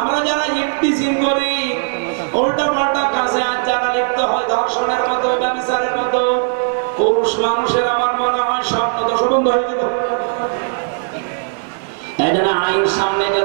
যারা ইফতিজিং করি, উল্টা পাল্টা কাজে আজ যারা লিপ্ত হয়, ধর্ষণের মতো, ব্যভিচারের মতো, পুরুষ মানুষের আমার মনে হয় স্বপ্ন দোষ বন্ধ হয়ে যেত। এই জন্য আইন সামনে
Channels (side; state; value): left; silent; digital silence